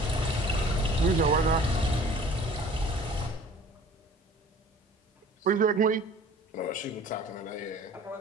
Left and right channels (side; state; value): both; normal; correlation 0.48